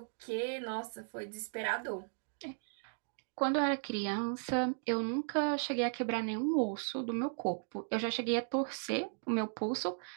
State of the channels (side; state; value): left; silent; digital silence